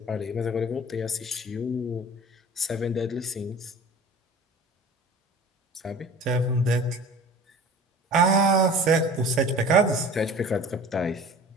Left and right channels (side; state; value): both; normal; correlation 0.42